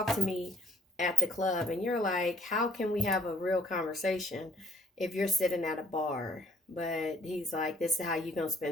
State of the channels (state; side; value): normal; both; correlation 0.63